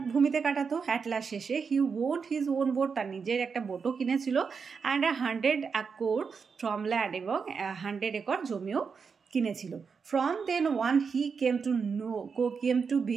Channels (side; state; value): left; quieter; 5.6 dB